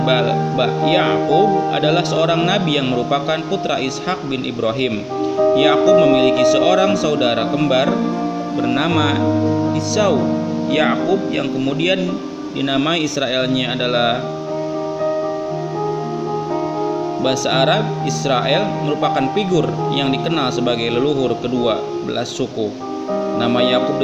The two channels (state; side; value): identical; both; correlation 1.00